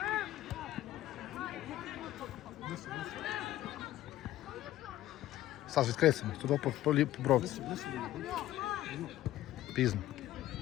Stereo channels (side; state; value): right; quieter; 14.3 dB